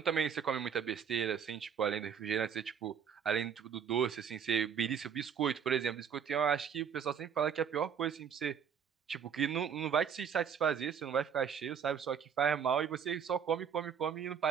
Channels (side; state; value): left; quieter; 7.6 dB